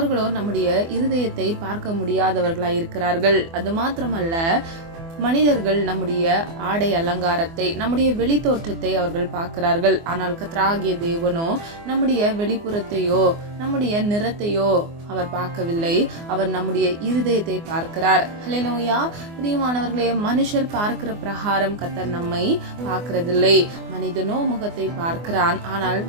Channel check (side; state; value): left; late; 24 ms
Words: நம்முடைய இருதயத்தை பார்க்க முடியாதவர்களாய் இருக்கிறார்கள். அது மாத்திரமல்ல, மனிதர்கள் நம்முடைய ஆடை அலங்காரத்தை, நம்முடைய வெளி தோற்றத்தை அவர்கள் பார்க்கிறார்கள். ஆனால் கர்த்தராகிய தேவனோ நம்முடைய வெளிப்புறத்தையோ நம்முடைய நிறத்தையோ அவர் பார்க்கவில்லை. அவர் நம்முடைய இருதயத்தை பார்க்கிறார். ஹல்லேலூயா. பிரியமானவர்களே, மனுஷர் பார்க்கிற பிரகாரம் கர்த்தர் நம்மை பார்க்கிறதில்லை. மனிதனோ முகத்தை பார்க்கிறான், ஆனால்